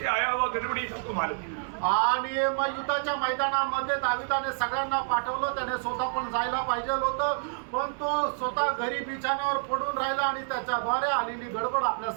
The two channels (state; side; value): silent; left; digital silence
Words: आया हुआ गड़बड़ी सबको मालूम है. आणि मग युद्धाच्या मैदानामध्ये दाविदाने सगळ्यांना पाठवलं. त्याने स्वतः पण जायला पाहिजे होतं, पण तो स्वतः घरी बिछाण्यावर पडून राहिला आणि त्याच्याद्वारे आलेली गडबड आपल्या